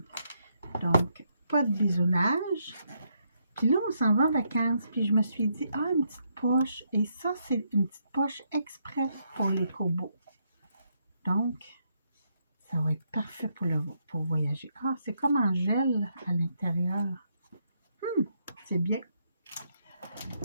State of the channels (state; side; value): inverted; both; correlation -0.77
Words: Donc, pas de bisounage. Puis là, on s'en va en vacances. Puis je me suis dit, ah, une petite poche. Et ça, c'est une petite poche exprès pour les Kobo. Donc, ça va être parfait pour voyager. Ah, c'est comme en gel à l'intérieur. C'est bien.